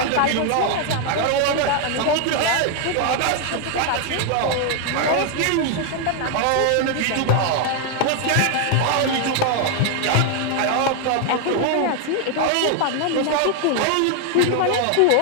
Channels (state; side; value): different; both; correlation 0.00